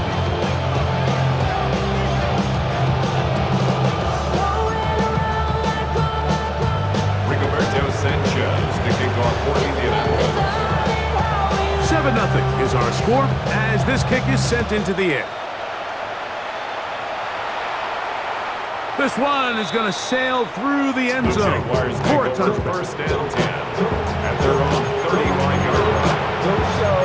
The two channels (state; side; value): identical; both; correlation 1.00